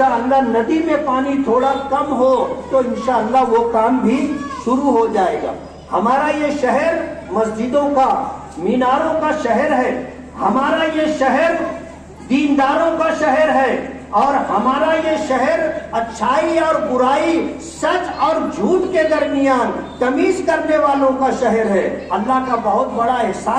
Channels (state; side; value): identical; both; correlation 1.00